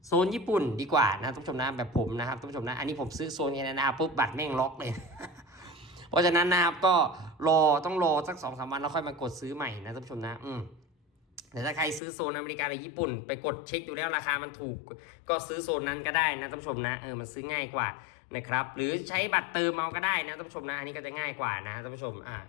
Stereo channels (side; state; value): right; drops out; at 12.0 s